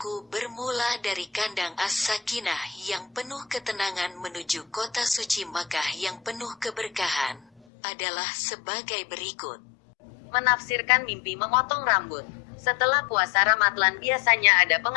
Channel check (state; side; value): drops out; right; at 7.6 s